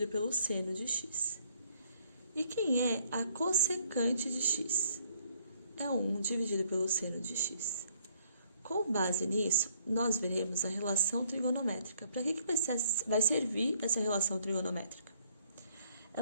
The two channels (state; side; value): inverted; both; correlation -0.66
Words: pelo seno de x. E quem é a cossecante de x? É 1 dividido pelo seno de x. Com base nisso, nós veremos a relação trigonométrica. Para que vai servir essa relação trigonométrica?